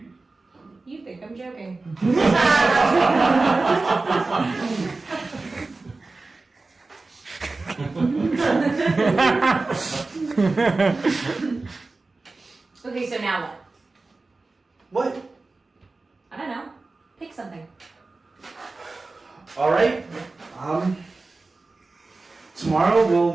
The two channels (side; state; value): left; quieter; 3.5 dB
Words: You think I'm joking. Okay, so now what? What? I don't know. Pick something. All right. Tomorrow